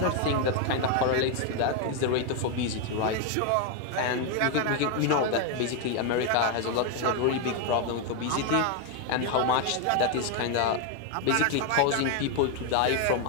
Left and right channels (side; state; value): both; different; correlation 0.01